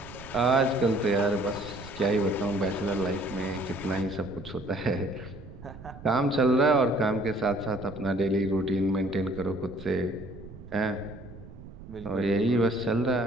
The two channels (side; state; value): right; noise; rumble, 16 dB below the sound